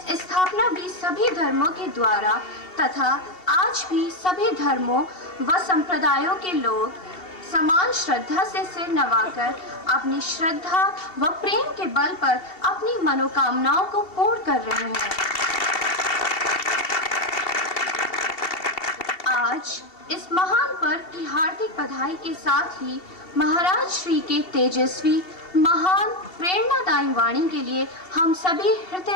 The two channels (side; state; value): right; late; 2.7 ms